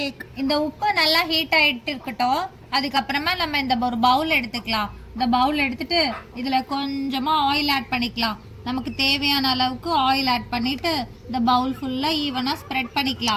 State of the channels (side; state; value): both; identical; correlation 1.00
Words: இந்த உப்பு நல்லா ஹீட் ஆகிட்டு இருக்கட்டும். அதுக்கப்புறமா நம்ம இந்த ஒரு பவுல் எடுத்துக்கலாம். இந்த பவுல் எடுத்துட்டு இதில் கொஞ்சமாக ஆயில் ஆட் பண்ணிக்கலாம். நமக்கு தேவையான அளவுக்கு ஆயில் ஆட் பண்ணிட்டு இந்த பவுல் ஃபுல்லாக ஈவனாக ஸ்ப்ரெட்